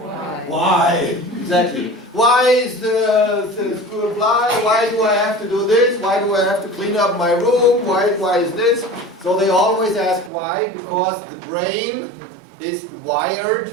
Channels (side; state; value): left; drops out; at 10.3 s